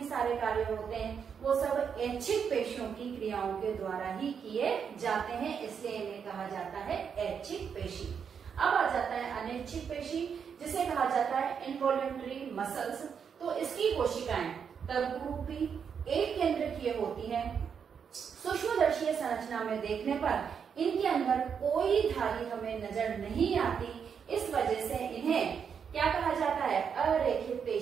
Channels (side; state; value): left; quieter; 7.0 dB